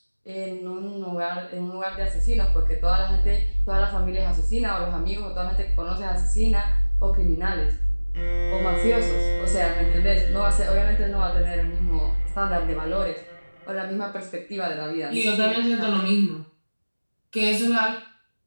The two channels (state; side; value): inverted; both; correlation -1.00